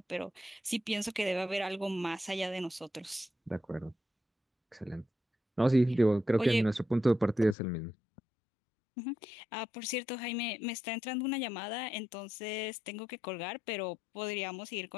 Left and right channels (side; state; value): right; drops out; at 7.6 s